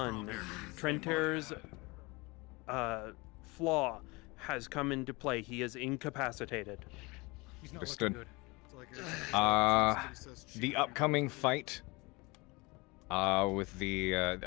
Trenter's flaw has come into play. He is incapacitated. He's not Understood. looking good. The upcoming fight with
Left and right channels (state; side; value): quieter; right; 25.3 dB